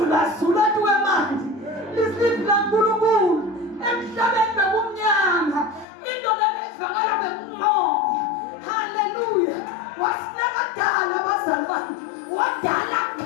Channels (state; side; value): drops out; right; at 5.9 s